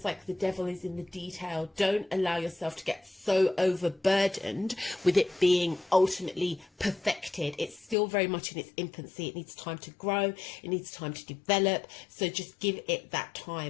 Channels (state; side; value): drops out; right; at 8.0 s